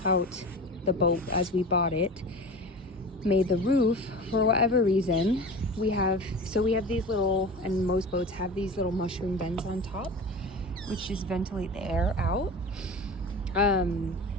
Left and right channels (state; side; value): normal; both; correlation 0.33